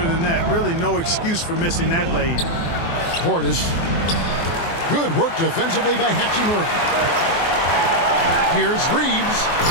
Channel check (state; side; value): late; right; 24 ms